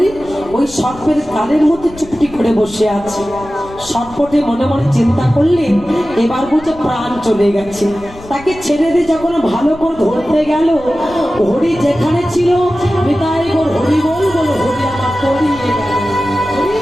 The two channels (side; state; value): left; noise; rumble, 19 dB below the sound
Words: ওই সর্পের গালের মধ্যে চুপটি করে বসে আছে। সর্পটি মনে মনে চিন্তা করলেন এবার বুঝে প্রাণ চলে গেছে। তাকে ছেড়ে দিয়ে যখন ভালো করে ধরতে গেল, হরি যেখানে ছিল বিদায় গোর হরি বল বল, হরি আমার পড়িয়ে গেল।